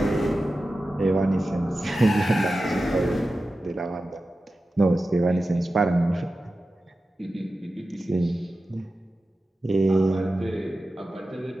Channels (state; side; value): normal; both; correlation 0.93